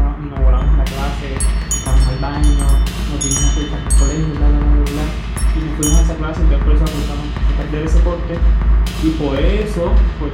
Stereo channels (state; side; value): identical; both; correlation 1.00